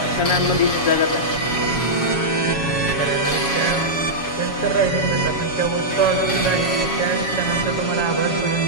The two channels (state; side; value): late; right; 7.2 ms